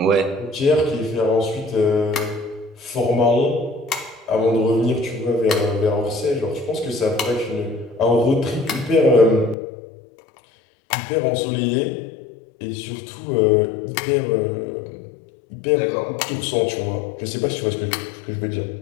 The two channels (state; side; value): drops out; right; at 9.6 s